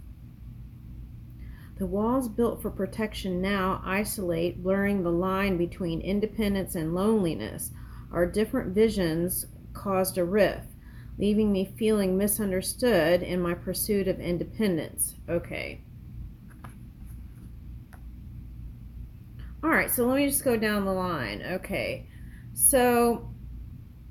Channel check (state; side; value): identical; both; correlation 1.00